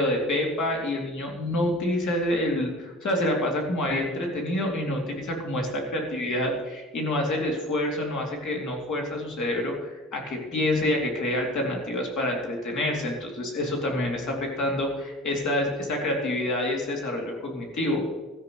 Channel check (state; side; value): normal; both; correlation 0.39